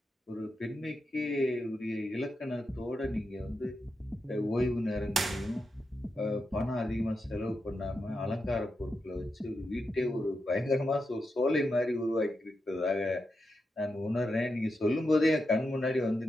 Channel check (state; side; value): normal; both; correlation 0.87